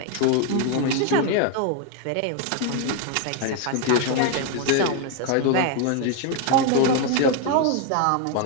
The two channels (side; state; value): both; different; correlation 0.01